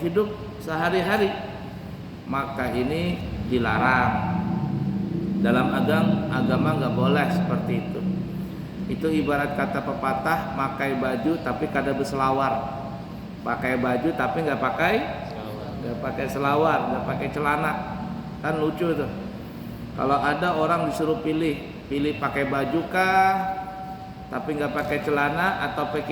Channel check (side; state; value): both; identical; correlation 1.00